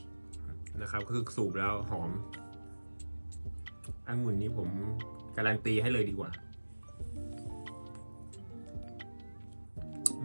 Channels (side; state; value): both; inverted; correlation -1.00